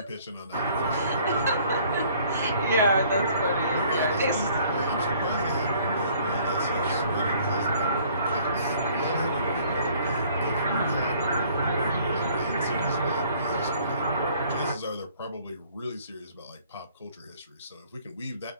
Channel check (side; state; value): both; inverted; correlation -0.58